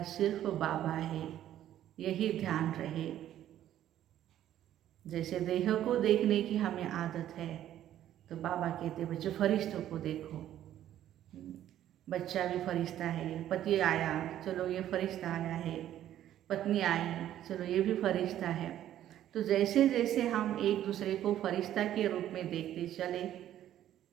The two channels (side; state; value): left; quieter; 11.9 dB